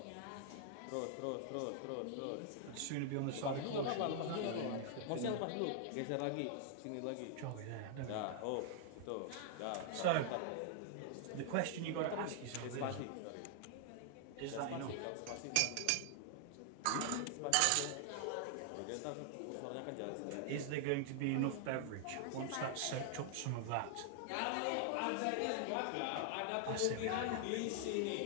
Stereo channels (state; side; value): different; both; correlation 0.00